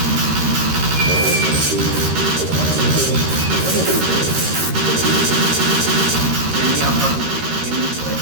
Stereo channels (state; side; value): late; left; 13 ms